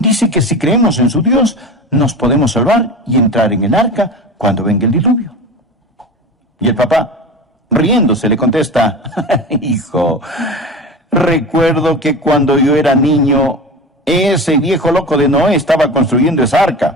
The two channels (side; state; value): both; normal; correlation 0.30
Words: que si creemos en su Dios, nos podemos salvar y entrar en el arca cuando venga el diluvio. Y el papá, riéndose, le contesta, hijo, recuerdo que cuando yo era niño, ese viejo loco de Noé estaba construyendo esa